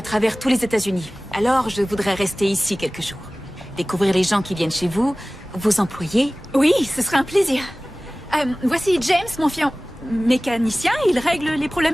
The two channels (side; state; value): both; normal; correlation 0.98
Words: travers tous les États-Unis. Alors, je voudrais rester ici quelques jours. Découvrir les gens qui viennent chez vous, vos employés. Oui, ce serait un plaisir. Voici James, mon mécanicien. Il règle les